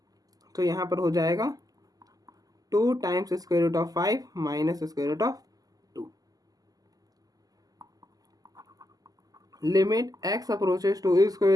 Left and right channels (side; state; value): left; late; 0.17 ms